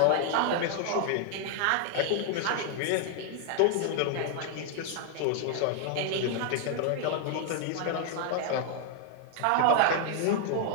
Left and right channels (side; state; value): both; different; correlation 0.00